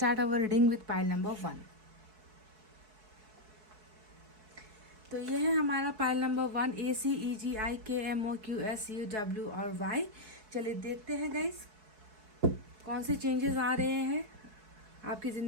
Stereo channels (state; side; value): late; left; 4.6 ms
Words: our reading with pile number 1। तो ये है हमारा पाइल नंबर 1 ACEGIKMOQSUW और Y। चलिए देखते हैं गाइस कौन से चेंजेस आ रहे हैं आपकी